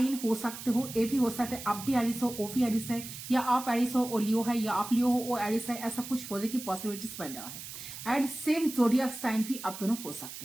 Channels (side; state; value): right; noise; hiss, 11 dB below the sound